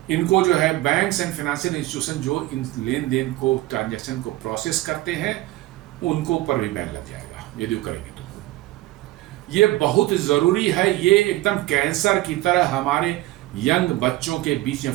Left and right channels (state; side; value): quieter; left; 17.5 dB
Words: इनको जो है बैंक्स एंड फाइनेंशियल इंस्टीट्यूशन जो इन लेन देन को, ट्रांजैक्शन को प्रोसेस करते हैं, उनको ऊपर भी बैन लग जाएगा यदि वो करेंगे तो। ये बहुत ज़रूरी है। ये एकदम कैंसर की तरह हमारे यंग बच्चों के बीच में